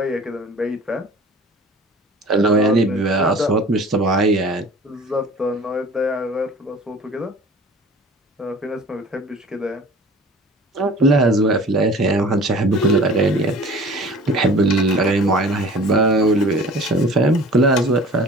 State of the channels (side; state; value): both; normal; correlation 0.44